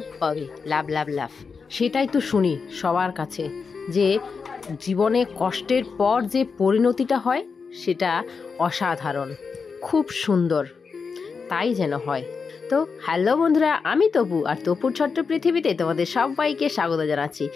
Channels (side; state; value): right; quieter; 5.2 dB